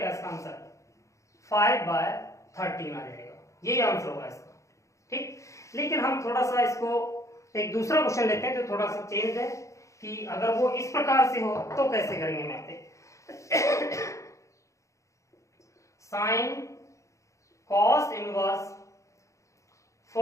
इसका आंसर, 5/13 आ जाएगा, यही आंसर होगा इसका। ठीक, लेकिन हम थोड़ा सा इसको एक दूसरा क्वेश्चन लेते हैं जो थोड़ा सा चेंज है, कि अगर वो इस प्रकार से हो तो कैसे करेंगे। मैं पे साइन कॉस इनवर्स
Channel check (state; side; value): late; right; 0.15 ms